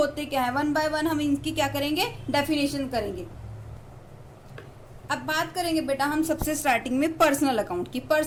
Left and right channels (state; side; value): identical; both; correlation 1.00